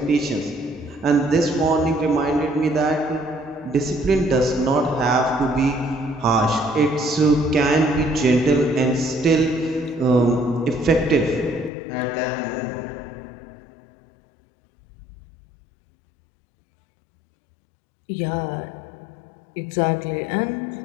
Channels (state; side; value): drops out; right; at 11.7 s